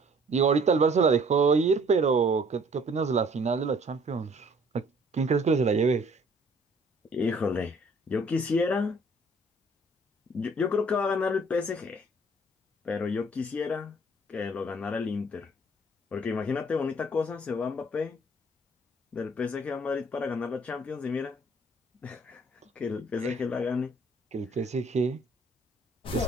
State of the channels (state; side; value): normal; both; correlation 0.57